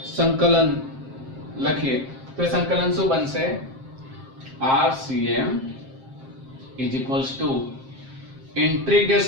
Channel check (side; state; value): left; late; 7.5 ms